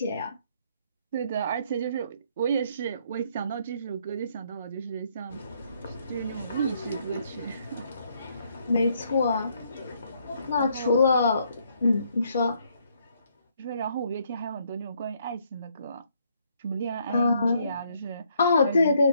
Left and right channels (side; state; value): both; inverted; correlation -0.70